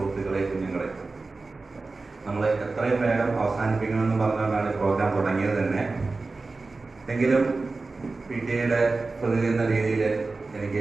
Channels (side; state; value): left; quieter; 3.7 dB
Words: കുഞ്ഞുങ്ങളെ, നമ്മൾ എത്രയും വേഗം അവസാനിപ്പിക്കണമെന്ന് പറഞ്ഞുകൊണ്ടാണ് പ്രോഗ്രാം തുടങ്ങിയത് തന്നെ. എങ്കിലും PTA പ്രതിനിധി എന്ന രീതിയിൽ